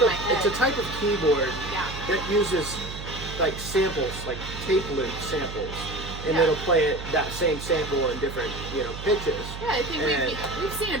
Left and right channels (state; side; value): noise; right; hum, 10 dB below the sound